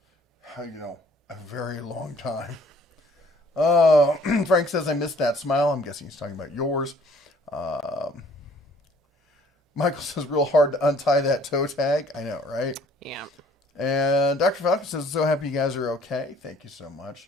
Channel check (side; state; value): both; normal; correlation 0.58